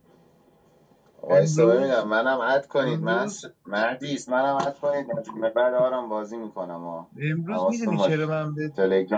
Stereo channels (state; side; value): identical; both; correlation 1.00